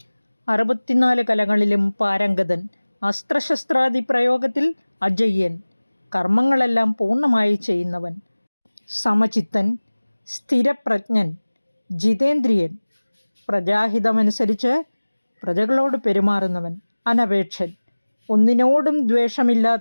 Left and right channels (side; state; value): both; inverted; correlation -1.00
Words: 64 കലകളിലും പാരംഗതൻ, അസ്ത്രശസ്ത്രാദി പ്രയോഗത്തിൽ അജയ്യൻ, കർമ്മങ്ങളെല്ലാം പൂർണ്ണമായി ചെയ്യുന്നവൻ, സമചിത്തൻ, സ്ഥിരപ്രജ്ഞൻ, ജിതേന്ദ്രിയൻ, പ്രജാഹിതമനുസരിച്ച് പ്രജകളോട് പെരുമാറുന്നവൻ, അനപേക്ഷൻ, ഒന്നിനോടും